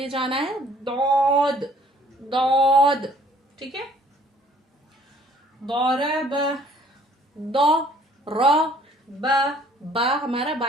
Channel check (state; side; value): normal; both; correlation 0.58